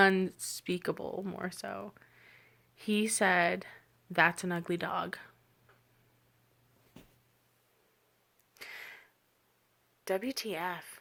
more so. He said, "That's an ugly dog." WTF?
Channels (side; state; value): both; identical; correlation 1.00